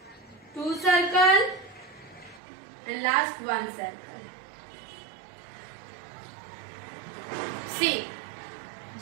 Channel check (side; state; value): left; drops out; at 2.4 s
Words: 2 circle, and last 1 circle. See,